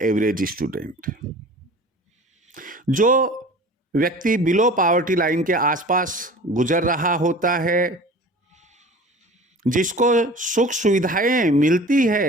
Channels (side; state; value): both; normal; correlation 0.41